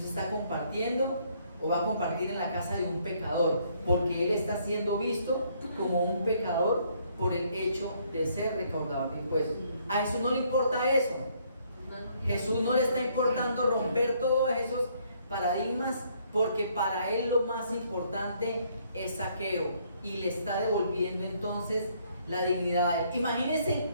está compartiendo o va a compartir en la casa de un pecador, porque él está siendo visto como un pecador por el hecho de ser recaudador de impuestos. A Jesús no le importa eso. Jesús no le está importando romper todos esos paradigmas, porque para él lo más importante es Zaqueo, y le está devolviendo entonces la dignidad. Imagínense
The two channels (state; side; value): inverted; both; correlation -0.67